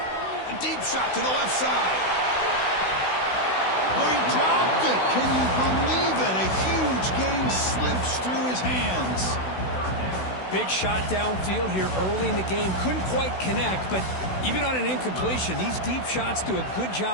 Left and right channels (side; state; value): right; late; 16 ms